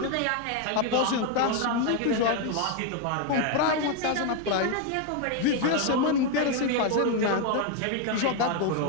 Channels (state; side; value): different; both; correlation 0.01